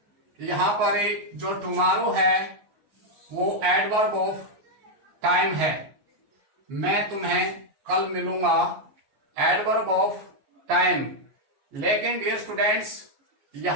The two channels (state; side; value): late; left; 14 ms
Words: यहां पर जो टुमारो है वो एडवर्ब ऑफ टाइम है। मैं तुम्हें कल मिलूंगा, एडवर्ब ऑफ टाइम। लेकिन डियर स्टूडेंट्स,